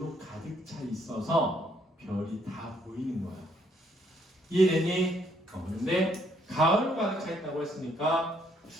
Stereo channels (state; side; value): normal; both; correlation 0.69